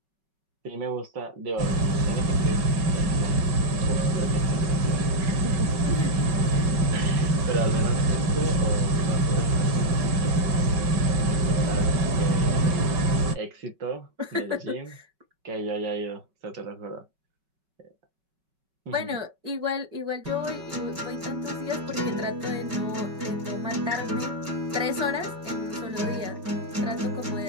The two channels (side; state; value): left; late; 5.3 ms